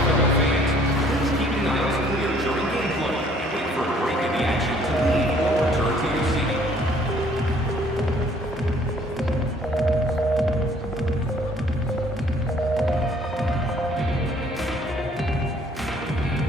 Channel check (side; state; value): both; normal; correlation 0.60